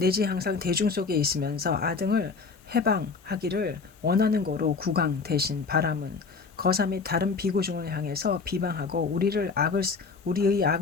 항상 대중 속에 있으면서 아등을 해방하기를 원하는 거로 국왕 대신 바람은 거사 및 다른 비구중을 향해서 비방하고 우리의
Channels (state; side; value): quieter; right; 4.7 dB